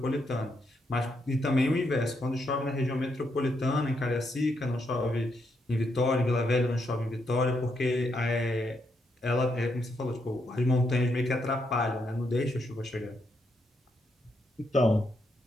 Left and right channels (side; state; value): both; normal; correlation 0.79